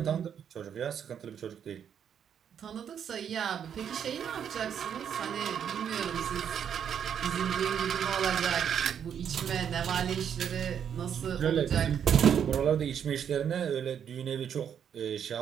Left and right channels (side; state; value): left; quieter; 8.4 dB